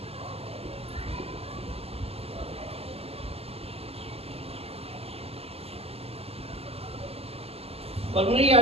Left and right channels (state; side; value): late; left; 0.29 ms